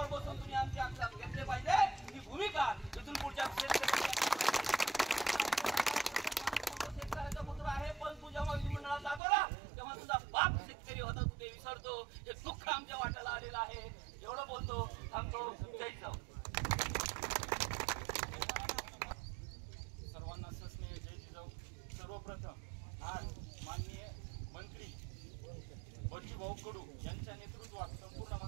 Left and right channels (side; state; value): left; drops out; at 9.2 s